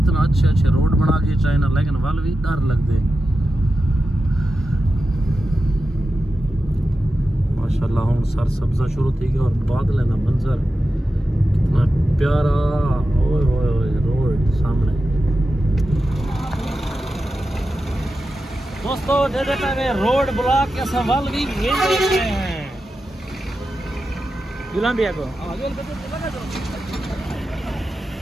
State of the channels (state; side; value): normal; both; correlation 0.91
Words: अच्छे रोड बना के चाइना लेकिन वाल भी डर लगते माशाल्लाह हम सर सब्जा शुरू थी गया और बादल ना मंजर कितना प्यारा ओए ओए ओए रोड सामने दोस्तों दे देता है रोड ब्लॉक के सवाल भी भेज देते हैं गुलाम भैया को